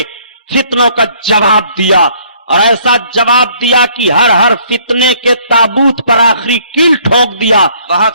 फितनों का जवाब दिया और ऐसा जवाब दिया कि हर हर फितने के ताबूत पर आखिरी कील ठोक दिया। बहुत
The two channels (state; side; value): inverted; both; correlation -0.61